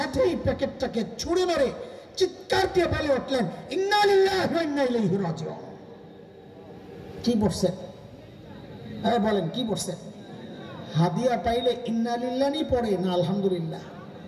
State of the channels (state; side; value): identical; both; correlation 1.00